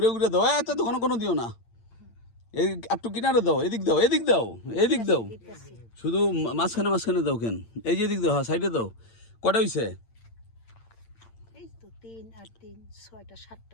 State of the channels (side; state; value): right; late; 8.8 ms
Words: দাও। এত তো কোনো দিও না, এই একটু কিনারে দাও, এদিক দাও, শুধু মাঝখানে দাও। কেন এই যে এদিক দাও, হ্যাঁ সাইডে দাও। কটা হয়েছে?